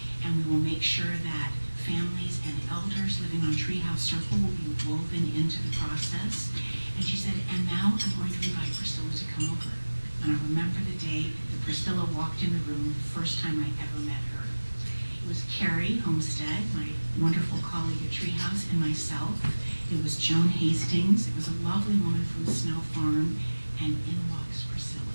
and we will make sure that families and elders living on Treehouse Circle will be woven into the process. And she said, and now I'm going to invite Priscilla to come over. And I remember the day that Priscilla walked in the room, the first time I ever met her. It was Carrie Homestead, my wonderful colleague at Treehouse, and myself. It was Joan Hastings. It was a lovely woman from Snow Farm, and in walks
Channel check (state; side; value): inverted; both; correlation -1.00